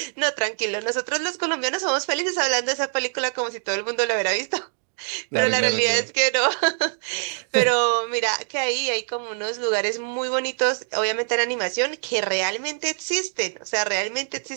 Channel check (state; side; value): silent; left; 61 dB below the other